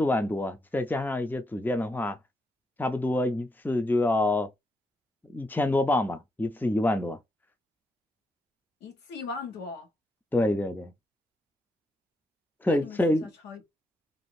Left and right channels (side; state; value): both; normal; correlation 0.81